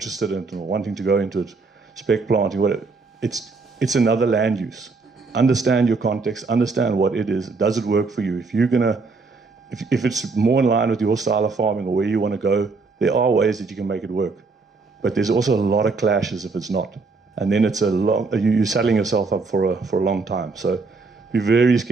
in it and wanting to go into it, spec planting, whatever. It's another land use. Understand your context. Understand what it is. Does it work for you? If it's more in line with your style of farming or where you want to go, there are ways that you can make it work. But there's also a lot of clashes if it's not. And then you're saddling yourself up for a long time. So be very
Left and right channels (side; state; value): left; quieter; 4.1 dB